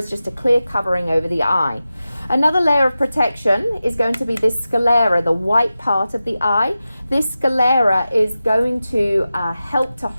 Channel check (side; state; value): both; inverted; correlation -0.93